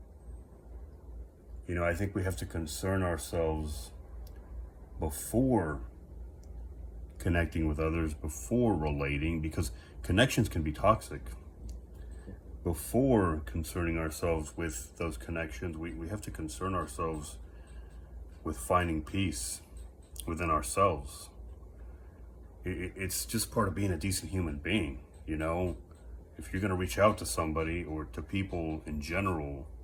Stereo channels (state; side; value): identical; both; correlation 1.00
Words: know, I think we have to concern ourselves before connecting with others, before relating, because connections can be toxic. Before concerning ourselves with those connections, we have to concern ourselves with finding peace within ourselves. It's just part of being a decent human being, you know? If you're going to reach out to somebody or to people in general,